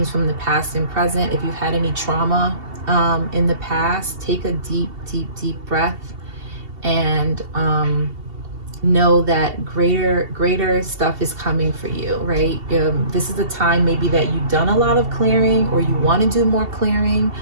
from the past and present. If you've had any trauma in the past, take a deep, deep, deep breath and know that greater stuff is coming for you, right? This is a time maybe that you've done a lot of clearing or you want to do more clearing,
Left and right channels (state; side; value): late; left; 2.7 ms